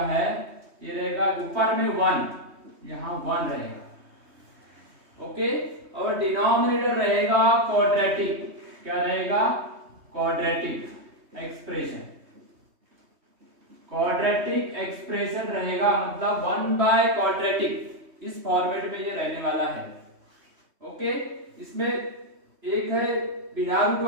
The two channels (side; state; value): left; late; 3.2 ms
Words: है, ये रहेगा ऊपर में 1, यहाँ 1 रहेगा, ओके। और डिनोमिनेटर रहेगा क्वाड्रेटिक, क्या रहेगा, क्वाड्रेटिक एक्सप्रेशन। क्वाड्रेटिक एक्सप्रेशन रहेगा, मतलब 1/क्वाड्रेटिक, इस फॉर्मेट में ये रहने वाला है, ओके। इसमें एक है बिना रूट